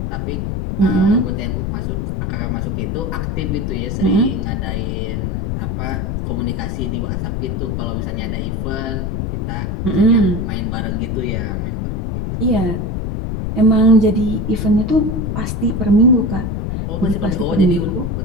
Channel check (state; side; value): noise; left; rumble, 1 dB below the sound